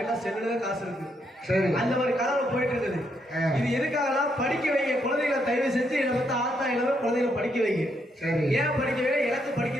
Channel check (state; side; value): normal; both; correlation 0.77